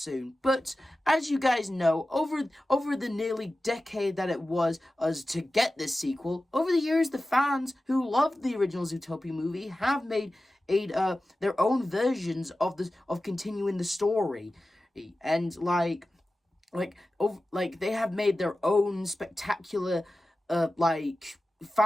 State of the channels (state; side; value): normal; both; correlation 0.95